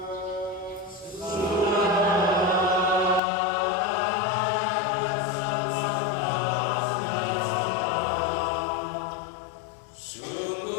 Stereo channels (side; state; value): right; drops out; at 3.2 s